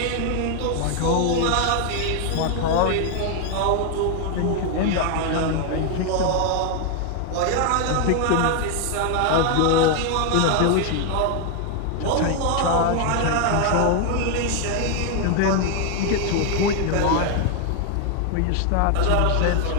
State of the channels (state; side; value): different; both; correlation 0.00